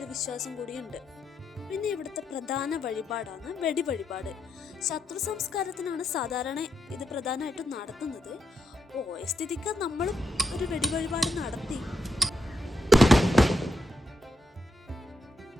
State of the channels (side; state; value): both; normal; correlation 0.80